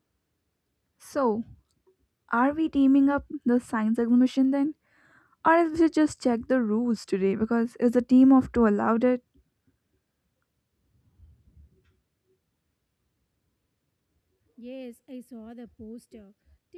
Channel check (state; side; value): identical; both; correlation 1.00